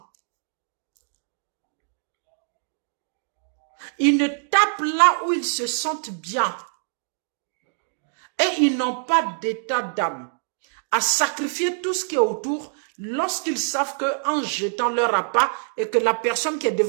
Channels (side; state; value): left; silent; digital silence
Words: Ils ne tapent là où ils se sentent bien. Et ils n'ont pas d'état d'âme à sacrifier tout ce qui est autour lorsqu'ils savent qu'en jetant leur appât et que la personne qui est